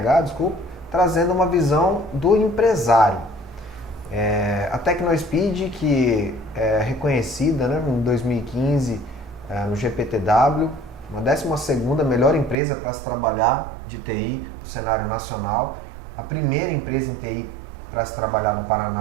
trazendo uma visão do empresário. A TecnoSpeed, que é reconhecida, né, em 2015 no GPTW, uma 12ª melhor empresa para se trabalhar de TI no cenário nacional, a primeira empresa em TI para se trabalhar no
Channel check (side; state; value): left; drops out; at 12.6 s